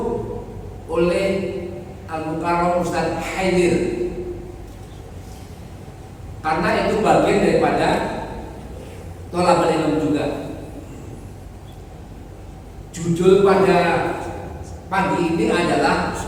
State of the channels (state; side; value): identical; both; correlation 1.00